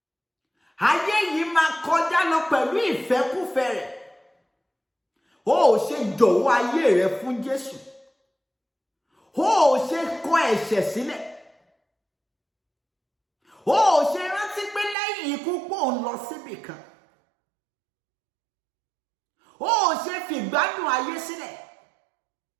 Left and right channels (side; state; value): left; drops out; at 15.0 s